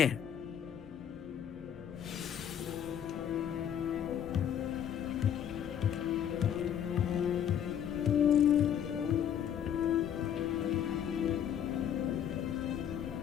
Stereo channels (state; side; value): quieter; right; 9.3 dB